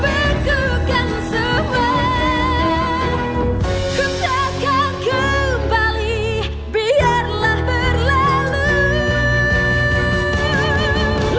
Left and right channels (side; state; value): both; identical; correlation 1.00